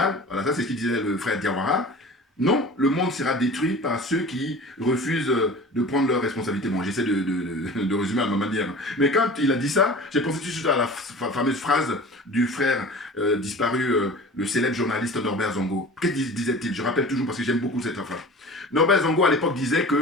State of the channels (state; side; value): normal; both; correlation 0.39